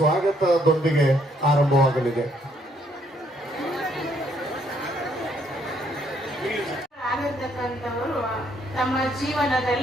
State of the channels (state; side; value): normal; both; correlation 0.69